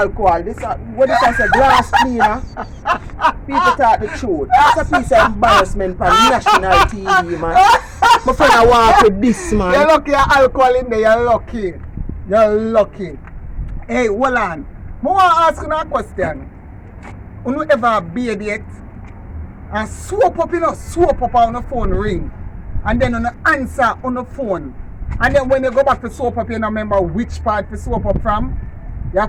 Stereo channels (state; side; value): identical; both; correlation 1.00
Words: This what this is a glass cleaner. People talk the truth. It's a piece of embarrassment for national TV, man. My friend I walk with this, man. You're lucky alcohol in there, you're lucky. You're lucky. Hey, hold on. I want to ask you a question. You ever bathe yet? And swoop up on the phone ring. And then on answer on the phone. And then when you go back to soap up, you don't remember which part to soap up from. You